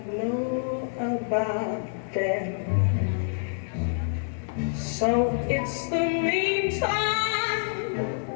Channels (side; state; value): right; silent; digital silence